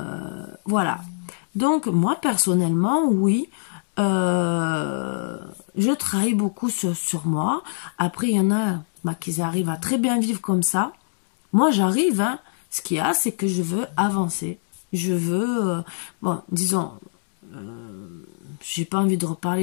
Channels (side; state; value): right; silent; digital silence